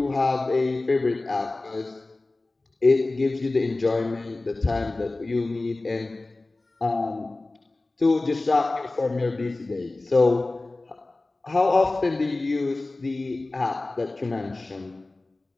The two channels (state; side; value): quieter; right; 3.1 dB